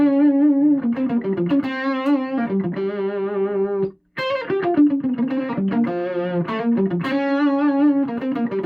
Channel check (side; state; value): both; identical; correlation 1.00